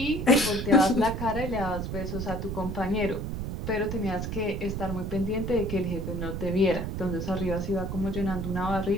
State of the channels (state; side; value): noise; right; rumble, 4 dB below the sound